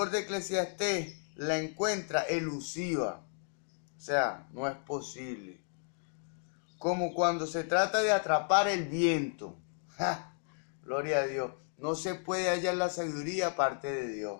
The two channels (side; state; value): right; silent; 55 dB below the other